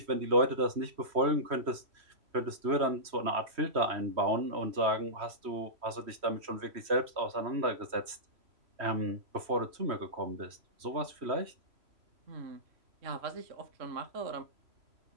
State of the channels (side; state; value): left; late; 3.1 ms